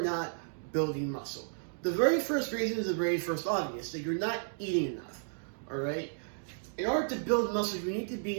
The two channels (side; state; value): left; silent; digital silence